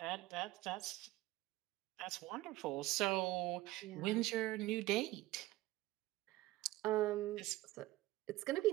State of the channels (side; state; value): left; quieter; 17.2 dB